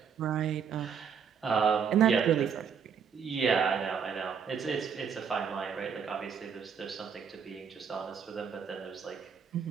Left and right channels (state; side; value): quieter; left; 6.9 dB